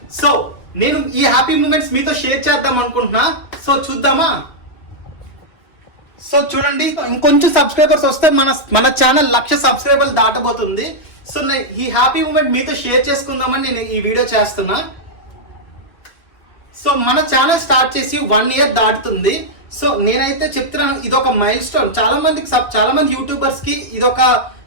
సో నేను ఈ హ్యాపీ మూమెంట్స్ మీతో షేర్ చేద్దాం అనుకుంటున్నా. సో చూద్దామా? సో చూడండి, ఇంకొంచెం సబ్స్క్రైబర్స్ వస్తే మన ఛానల్ 1,00,000 సబ్స్క్రైబర్లు దాటబోతుంది. సో ఈ హ్యాపీ మూమెంట్ మీతో షేర్ చేసుకుందామని నేను ఈ వీడియో చేస్తున్నా. సో మన ఛానల్ స్టార్ట్ చేసి 1 year దాటుతుంది. సో నేనైతే చెప్తున్నాను, ఇదొక మైల్ స్టోన్. చాలా మంది యూట్యూబర్స్ కి ఇదొక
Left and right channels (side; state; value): right; late; 2.5 ms